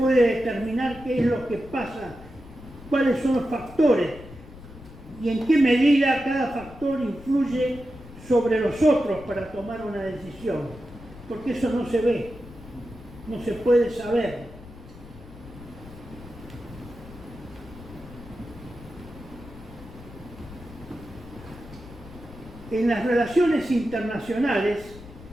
determinar qué es lo que pasa, cuáles son los factores y en qué medida cada factor influye sobre los otros para tomar una decisión, porque eso no se ve, no se puede saber. En las relaciones internacionales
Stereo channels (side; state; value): left; noise; rumble, 17 dB below the sound